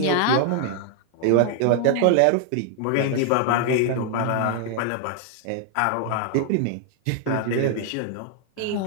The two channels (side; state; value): both; different; correlation 0.00